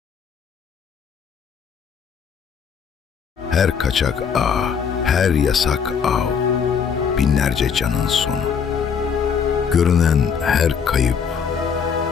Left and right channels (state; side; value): quieter; right; 6.8 dB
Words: Her kaçak ağ, her yasak av, binlerce canın sonu. Görünen her kayıp,